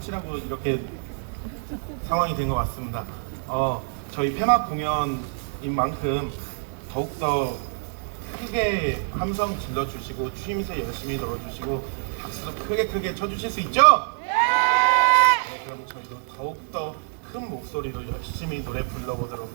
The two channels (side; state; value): left; silent; 61 dB below the other